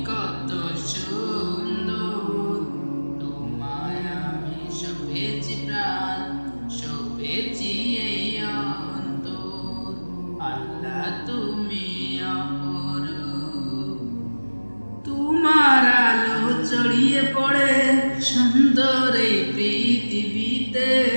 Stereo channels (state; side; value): inverted; both; correlation -1.00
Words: কত সুন্দর। তোমায় আমি সপেছি প্রাণ, সপেছি এই অন্তর। আল্লাহ তুমি অপর, তোমার আলো ছড়িয়ে পড়ে সুন্দর এই পৃথিবীতে।